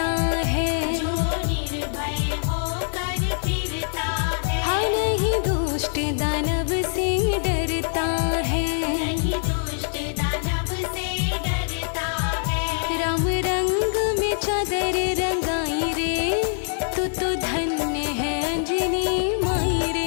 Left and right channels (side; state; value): right; silent; 63 dB below the other